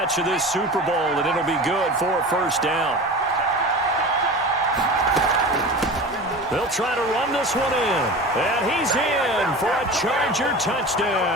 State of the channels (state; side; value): normal; both; correlation 0.33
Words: of this Super Bowl, and it'll be good for a first down. They'll try to run this one in. And he's in for a Charger